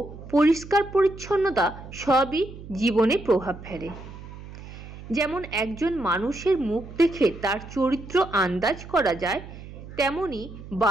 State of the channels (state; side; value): noise; right; hum, 14 dB below the sound